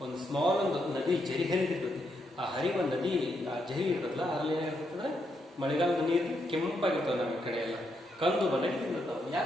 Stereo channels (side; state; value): both; normal; correlation 0.79